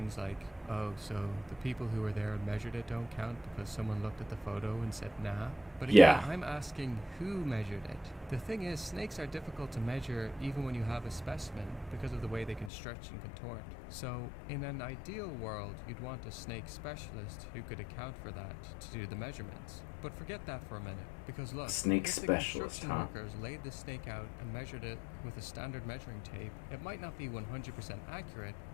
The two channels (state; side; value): drops out; right; at 12.7 s